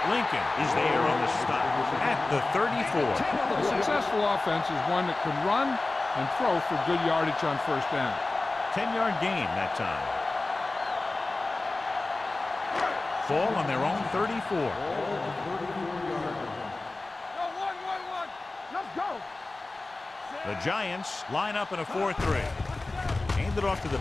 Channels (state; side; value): quieter; right; 3.2 dB